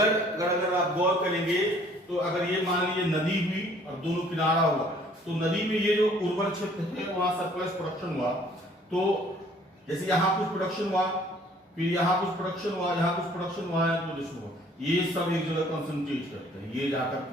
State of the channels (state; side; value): normal; both; correlation 0.57